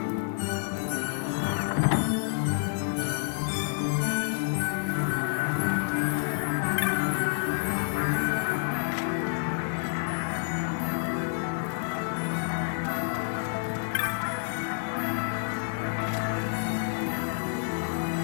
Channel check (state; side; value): silent; right; digital silence